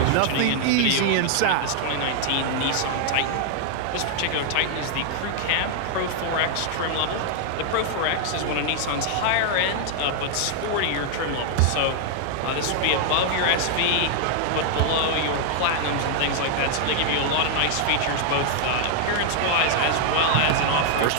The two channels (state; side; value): different; both; correlation 0.00